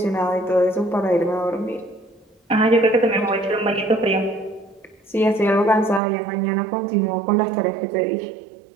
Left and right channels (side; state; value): left; drops out; at 6.0 s